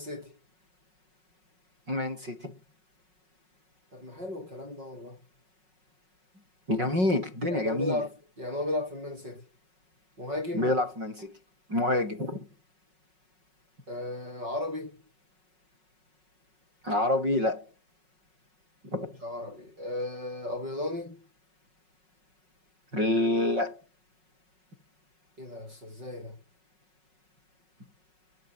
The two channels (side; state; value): left; late; 5.4 ms